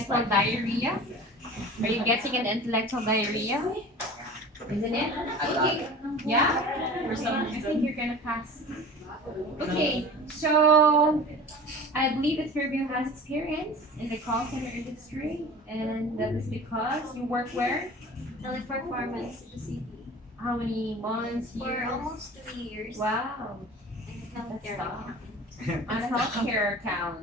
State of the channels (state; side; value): normal; both; correlation 0.39